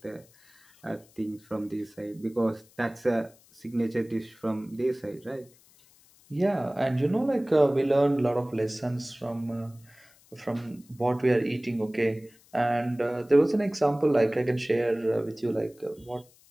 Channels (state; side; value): noise; left; hiss, 28 dB below the sound